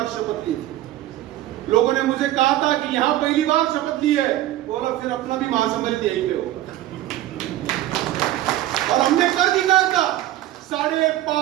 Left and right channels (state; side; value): quieter; left; 14.3 dB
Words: शपथ ली थी। लोगों ने मुझे कहा था कि यहां पहली बार शपथ ली है, बोला फिर अपना भी महासम्मेलन यहीं पे होगा। और हमने कर दिखाया था,